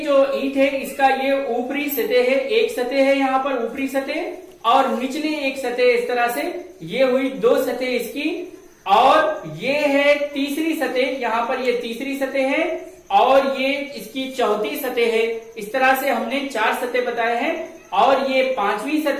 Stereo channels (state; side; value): identical; both; correlation 1.00